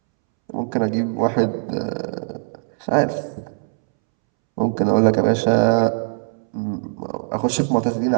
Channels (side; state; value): left; silent; 65 dB below the other